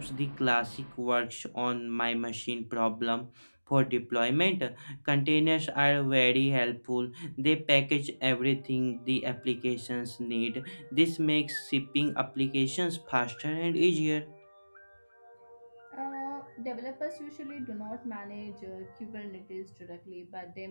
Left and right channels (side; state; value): both; inverted; correlation -1.00